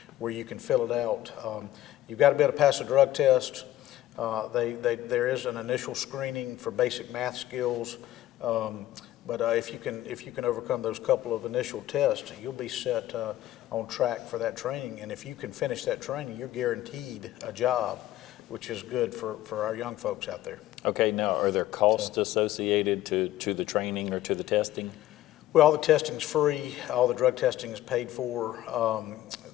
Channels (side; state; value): right; quieter; 14.3 dB